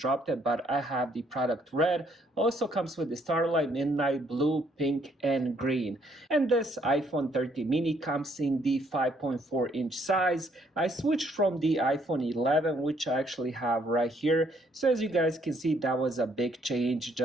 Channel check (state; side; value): normal; both; correlation 0.68